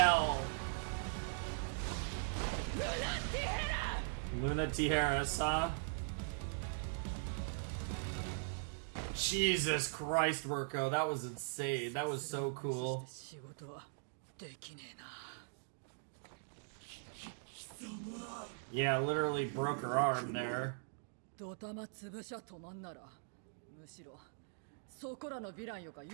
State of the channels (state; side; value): silent; left; digital silence